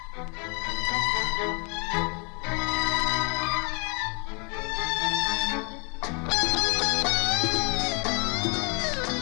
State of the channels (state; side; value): quieter; right; 34.6 dB